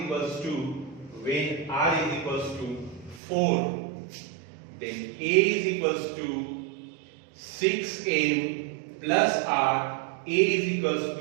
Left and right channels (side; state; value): left; drops out; at 3.2 s